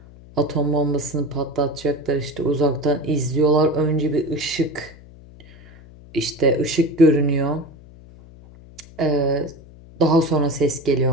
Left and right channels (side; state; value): left; noise; hum, 21 dB below the sound